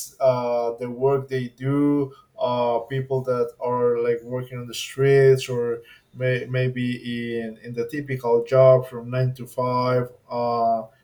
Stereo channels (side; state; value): both; identical; correlation 1.00